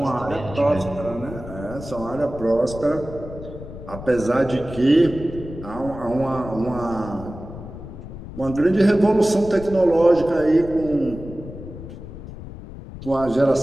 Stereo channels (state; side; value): noise; left; rumble, 12 dB below the sound